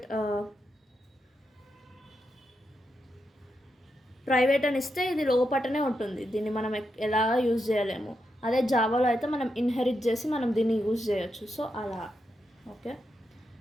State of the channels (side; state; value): both; normal; correlation 0.85